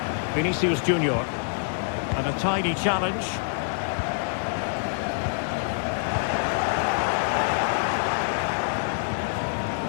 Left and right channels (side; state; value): right; silent; digital silence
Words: Vinicius Junior. And a tidy challenge.